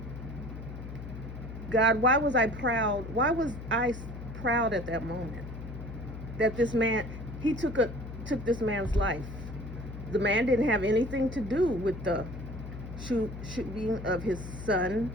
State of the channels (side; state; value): left; noise; hum, 10 dB below the sound